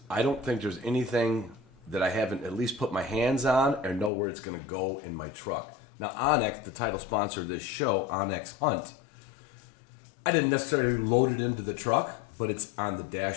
I don't think there's anything that I haven't at least put my hands on or know where it's going to go in my truck. Now, Onyx, the title sponsor of this show, Onyx Hunt, I didn't necessarily load it into the truck, but it's on the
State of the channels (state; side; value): drops out; right; at 4.1 s